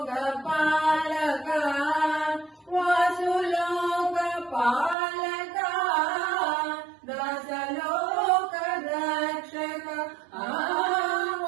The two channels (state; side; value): drops out; left; at 5.0 s